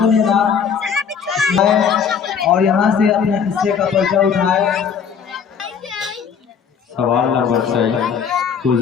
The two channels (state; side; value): quieter; right; 6.9 dB